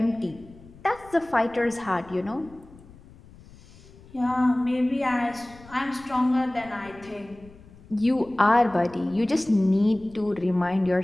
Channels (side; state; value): left; noise; rumble, 22 dB below the sound